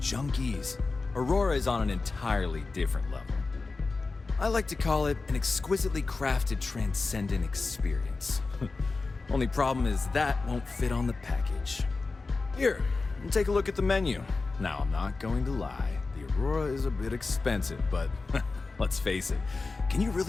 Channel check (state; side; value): quieter; right; 3.9 dB